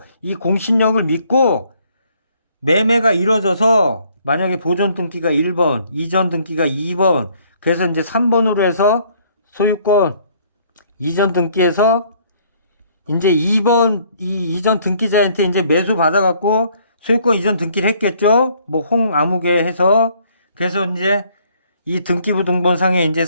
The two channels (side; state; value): both; inverted; correlation -0.63